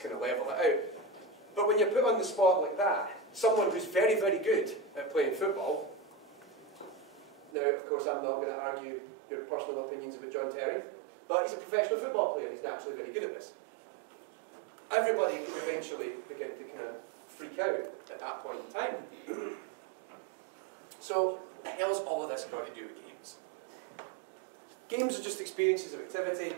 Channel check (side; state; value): left; drops out; at 7.6 s